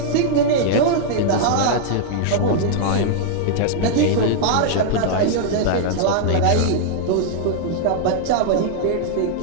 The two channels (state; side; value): different; both; correlation -0.01